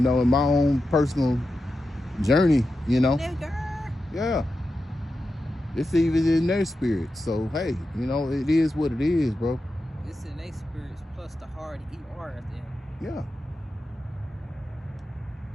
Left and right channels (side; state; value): both; normal; correlation 0.90